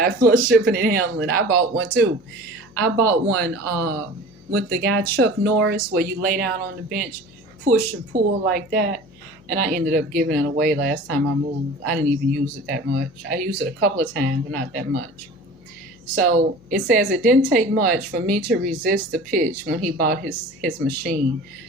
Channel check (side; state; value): left; noise; hum, 27 dB below the sound